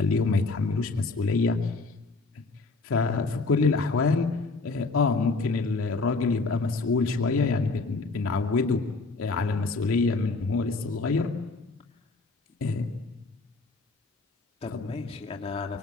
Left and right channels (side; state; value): right; quieter; 3.8 dB